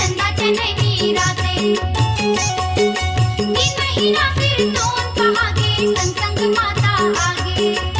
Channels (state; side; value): identical; both; correlation 1.00